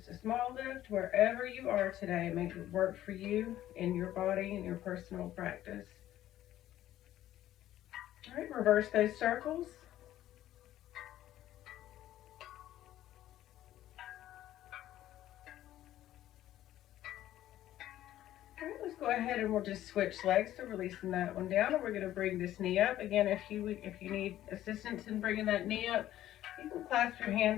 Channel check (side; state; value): right; quieter; 13.2 dB